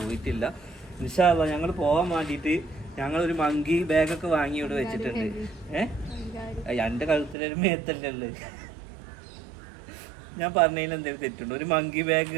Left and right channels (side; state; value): left; drops out; at 7.4 s